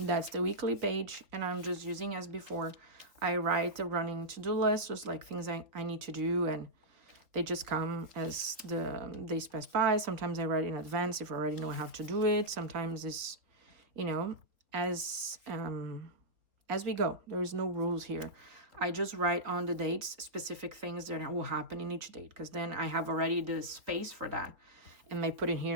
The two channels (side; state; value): left; late; 3.6 ms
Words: the weekly page, and I'm just using as before. I write a running to-do list, just like things I need to do, and they just come as the days pass by. Sometimes I write in advance if I already know I have to do it. Sometimes it's, you know, as we go. There is no rules here. I just write on the dates specific things that will happen in each date, because then I have already the space for that. And I put in